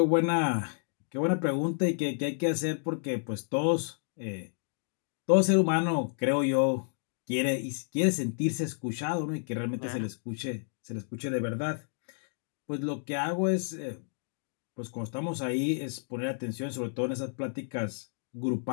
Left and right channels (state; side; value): silent; right; digital silence